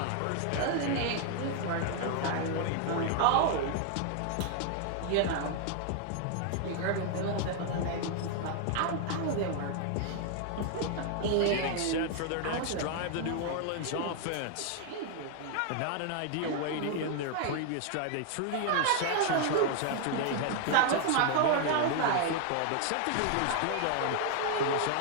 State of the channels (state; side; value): different; both; correlation 0.00